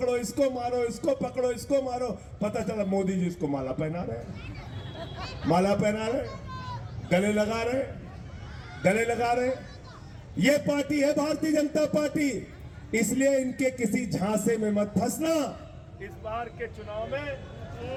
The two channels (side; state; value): both; identical; correlation 1.00